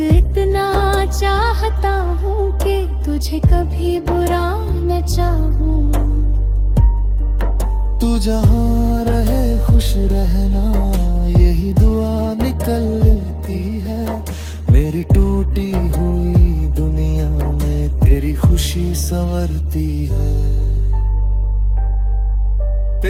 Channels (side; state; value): both; identical; correlation 1.00